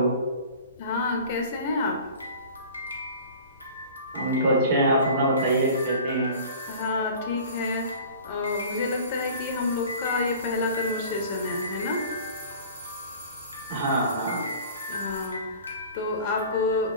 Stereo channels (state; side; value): inverted; both; correlation -0.43